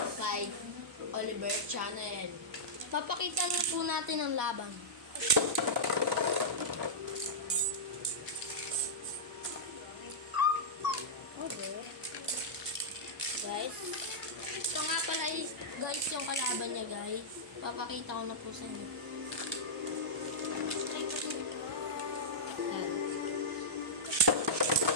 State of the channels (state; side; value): normal; both; correlation -0.13